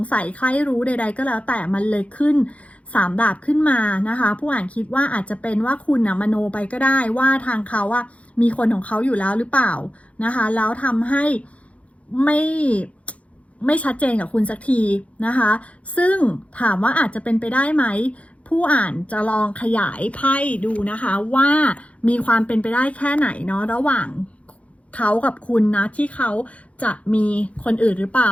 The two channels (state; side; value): late; right; 0.064 ms